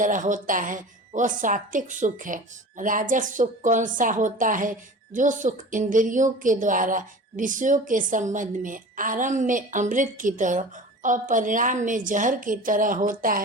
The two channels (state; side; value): normal; both; correlation 0.37